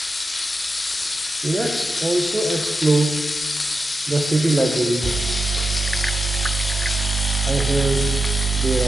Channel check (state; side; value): normal; both; correlation 0.89